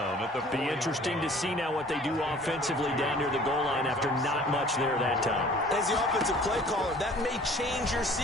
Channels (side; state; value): both; normal; correlation 0.50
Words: at the 40. Be interesting to see now what they do offensively down near the goal line after not much there that time. As the offensive play caller, that may change your